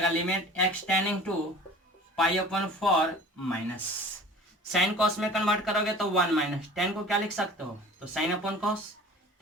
limit x tending to π/4 minus, sine cos में कन्वर्ट करोगे तो 1 माइनस tan को क्या लिख सकते हो, तो साइन अपॉन कॉस,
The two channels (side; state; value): both; normal; correlation 0.44